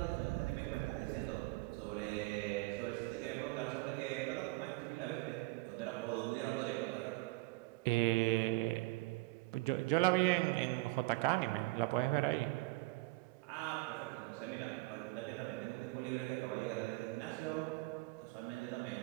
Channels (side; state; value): left; quieter; 23.0 dB